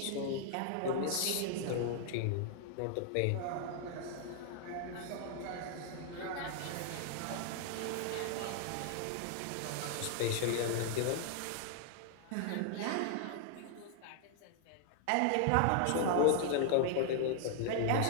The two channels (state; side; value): different; both; correlation 0.00